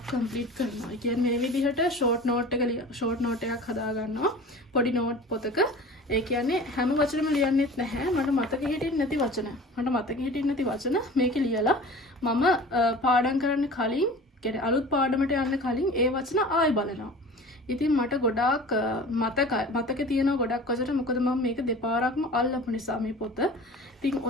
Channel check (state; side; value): normal; both; correlation 0.40